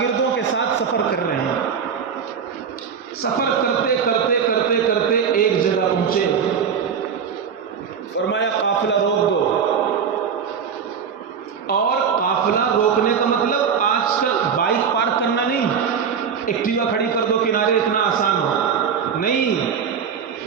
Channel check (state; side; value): quieter; left; 6.9 dB